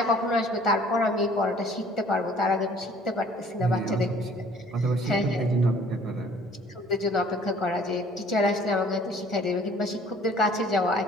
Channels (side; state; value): both; normal; correlation 0.55